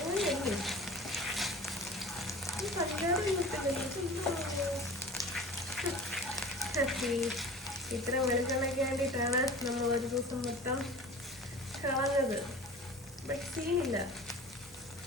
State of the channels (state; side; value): normal; both; correlation 0.40